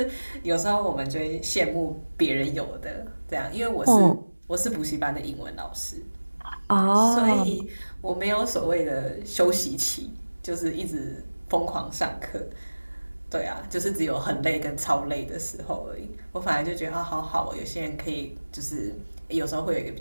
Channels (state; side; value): inverted; both; correlation -1.00